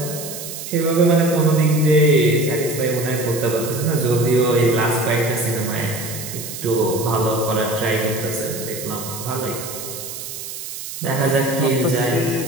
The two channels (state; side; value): noise; right; hiss, 9 dB below the sound